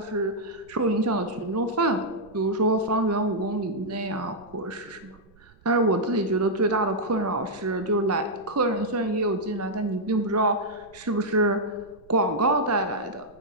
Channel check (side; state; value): right; noise; rumble, 28 dB below the sound